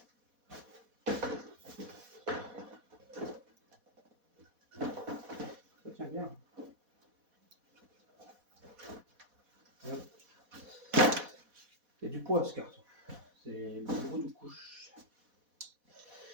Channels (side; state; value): left; late; 4.1 ms